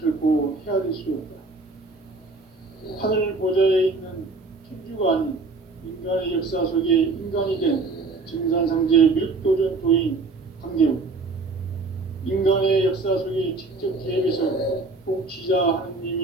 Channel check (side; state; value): left; quieter; 3.7 dB